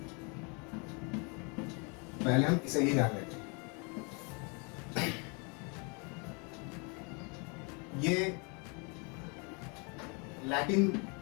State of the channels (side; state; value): right; quieter; 33.2 dB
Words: पहले हम इसे ही जान लेते हैं। ये लैटिन